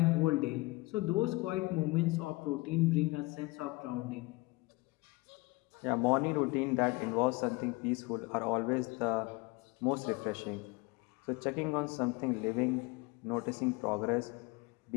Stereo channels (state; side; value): quieter; right; 23.3 dB